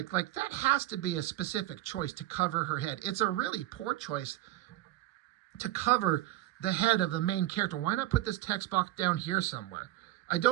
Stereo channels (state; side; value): quieter; left; 15.4 dB